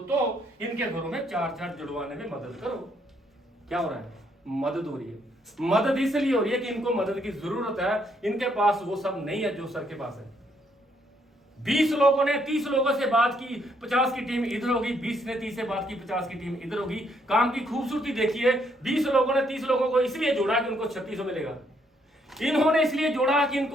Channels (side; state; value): both; normal; correlation 0.72